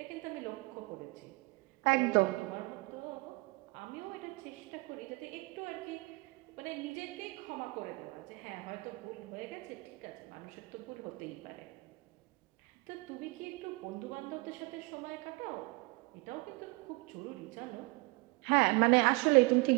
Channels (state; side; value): quieter; left; 26.0 dB